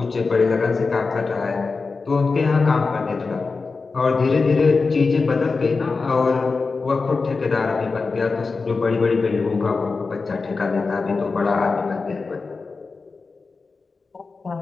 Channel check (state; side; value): quieter; right; 4.3 dB